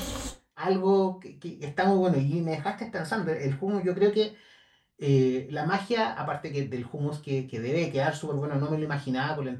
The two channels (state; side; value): identical; both; correlation 1.00